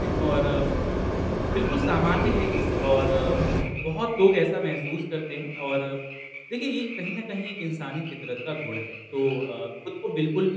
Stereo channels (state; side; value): identical; both; correlation 1.00